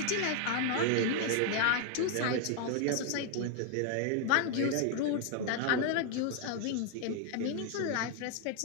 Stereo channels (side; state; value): both; different; correlation 0.00